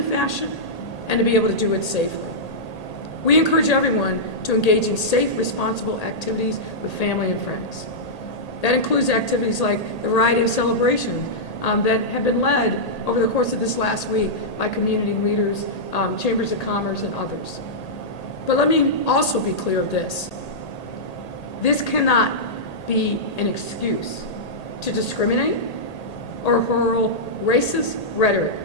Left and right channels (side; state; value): right; late; 1.8 ms